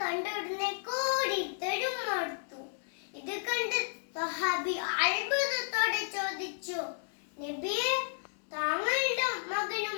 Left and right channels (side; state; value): right; silent; 56 dB below the other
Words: കണ്ടുടനെ കൂടിത്തെടുത്തു. ഇത് കണ്ട് സ്വഹാബി അത്ഭുതത്തോടെ ചോദിച്ചു, നബിയെ, താങ്കളുടെ മകനും